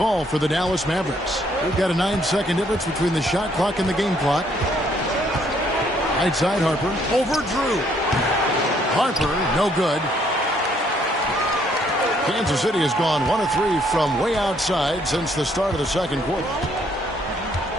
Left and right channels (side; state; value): both; normal; correlation 0.67